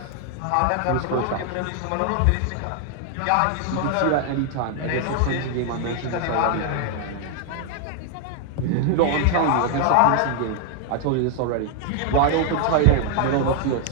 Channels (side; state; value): both; different; correlation 0.00